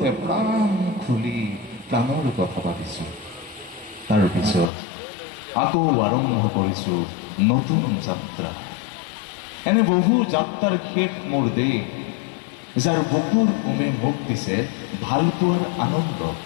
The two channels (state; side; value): drops out; right; at 4.7 s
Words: প্ৰাণ খুলি প্ৰাণৰ কথা পাতিছোঁ। তাৰপিছত আকৌ আৰম্ভ কৰিছোঁ নতুন যাত্ৰা। এনে বহু যাত্ৰাৰ শেষ মোৰ দেশ, যাৰ বুকুৰ উমে মোক দিছে ভালপোৱাৰ আনন্দ,